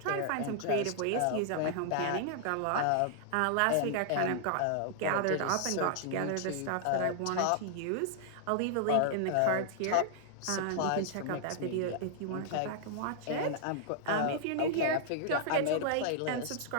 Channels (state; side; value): different; both; correlation -0.01